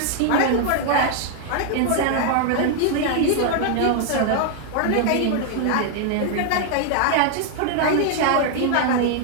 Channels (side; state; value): both; different; correlation 0.00